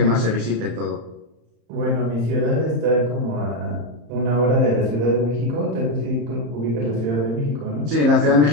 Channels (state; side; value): late; left; 34 ms